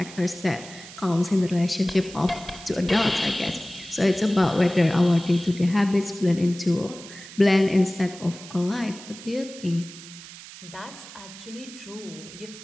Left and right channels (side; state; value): right; noise; hiss, 16 dB below the sound